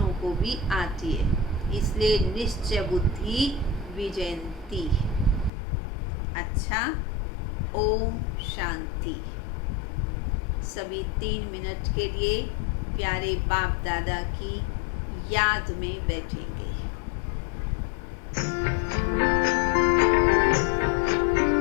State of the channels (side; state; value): right; drops out; at 5.5 s